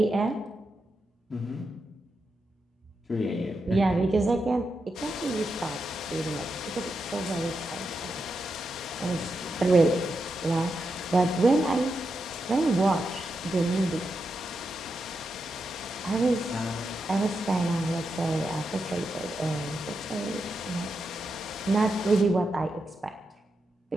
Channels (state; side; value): normal; both; correlation 0.86